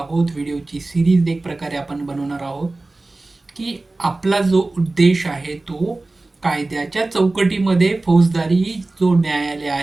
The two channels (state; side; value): quieter; left; 3.1 dB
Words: व्हिडिओची सिरीज एक प्रकारे आपण बनवणार आहोत की आपला जो उद्देश आहे तो कायद्याच्या चौकटीमध्ये फौजदारी जो न्यायालय